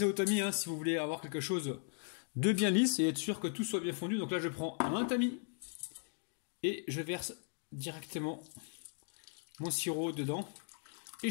au tamis hein, si vous voulez avoir quelque chose de bien lisse et être sûr que tout soit bien fondu. Donc là, je prends un tamis et je verse directement mon sirop dedans. Et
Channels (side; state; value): right; silent; 53 dB below the other